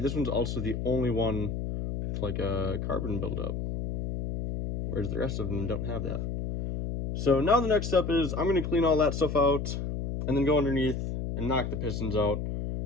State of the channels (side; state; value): left; noise; hum, 3 dB below the sound